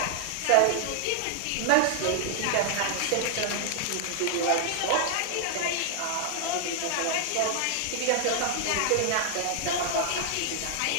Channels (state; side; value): different; both; correlation 0.00